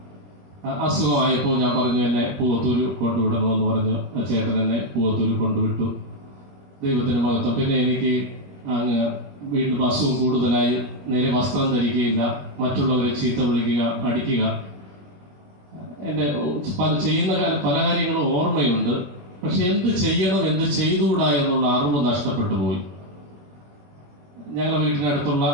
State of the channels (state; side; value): late; left; 21 ms